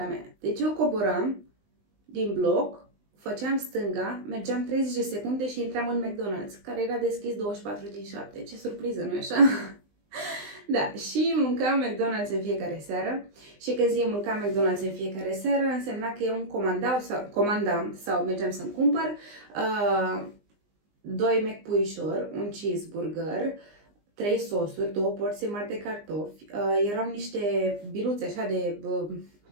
mea. Deci eu coboram din bloc, făceam stânga, mergeam 30 de secunde și intram în McDonald's, care era deschis 24/7. Ce surpriză, nu-i așa? Da, și mâncam McDonald's în fiecare seară. Și când zic mâncam McDonald's în fiecare seară, însemna că eu îmi comandam sau mergeam să-mi cumpăr 2 McPuișori, un cheeseburger, 3 sosuri, 2 porții mari de cartofi, erau niște biluțe așa de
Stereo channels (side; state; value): left; late; 19 ms